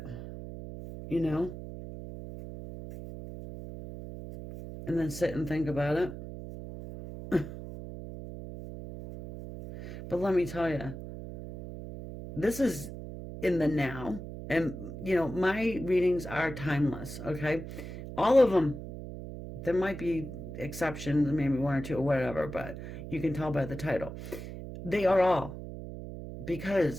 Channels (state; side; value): noise; right; hum, 10 dB below the sound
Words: And then sit and think about it. But let me tell you, this is in the now. And, my readings are timeless, okay? All of them. There might be exceptions, maybe one or two or whatever, but you can tell by the title. They are all.